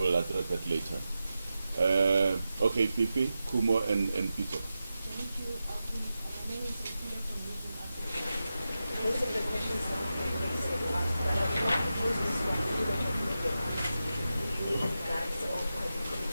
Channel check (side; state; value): both; inverted; correlation -0.91